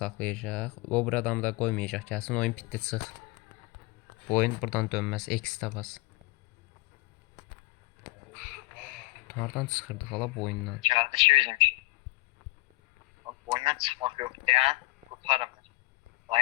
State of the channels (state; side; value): quieter; right; 23.3 dB